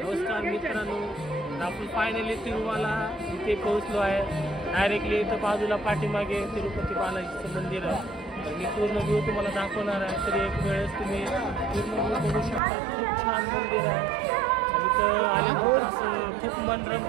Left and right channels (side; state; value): left; drops out; at 12.6 s